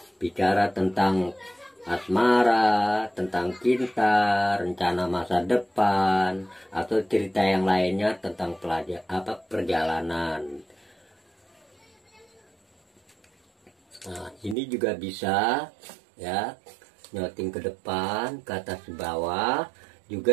bicara tentang asmara, tentang cinta, rencana masa depan, atau cerita yang lainnya tentang perjalanan. Nah, ini juga bisa ya, nyoting ke depan, ke atas ke bawah,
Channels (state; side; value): drops out; left; at 14.6 s